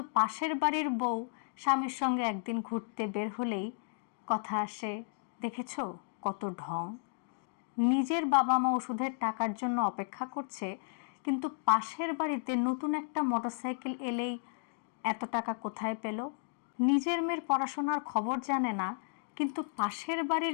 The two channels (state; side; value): silent; right; digital silence